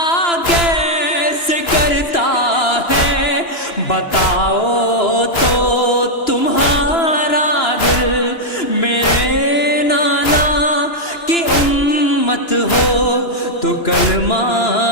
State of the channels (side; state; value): right; late; 2.9 ms